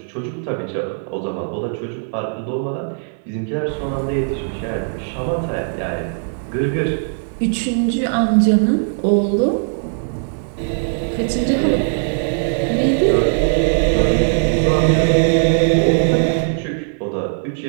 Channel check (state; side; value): silent; left; 65 dB below the other